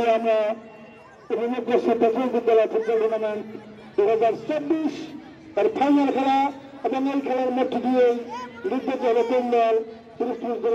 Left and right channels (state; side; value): identical; both; correlation 1.00